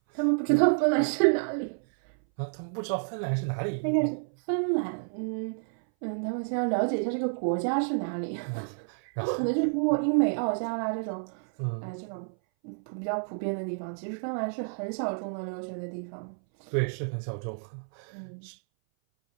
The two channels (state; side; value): silent; left; 58 dB below the other